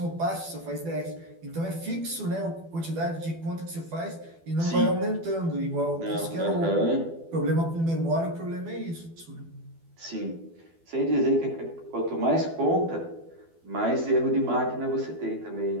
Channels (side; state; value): left; late; 12 ms